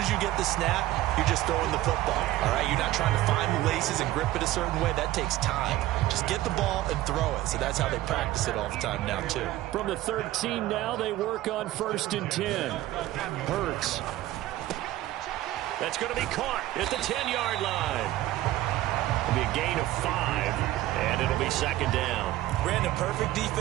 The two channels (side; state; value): left; quieter; 15.5 dB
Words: you get the snap, you're just throwing the football. All right, you're not trying to find the laces and grip it a certain way. That takes time. Just get the ball and throw it. So that's how they practice it all the time now, too. From the 13 now, they work on 1st and 10. Hurts. That's going to be caught at the 10-yard line. It'll be a gain of 5, and it'll be second down. Brandon, perfect